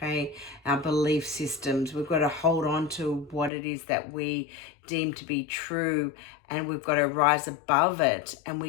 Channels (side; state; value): right; drops out; at 3.5 s